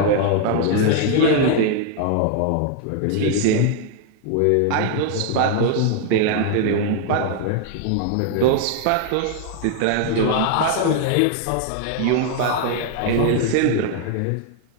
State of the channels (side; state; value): both; different; correlation 0.00